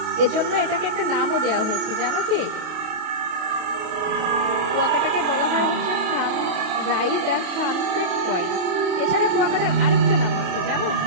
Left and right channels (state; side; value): late; left; 29 ms